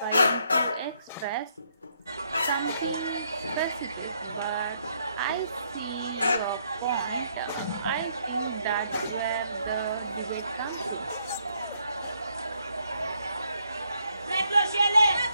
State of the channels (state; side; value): inverted; both; correlation -0.72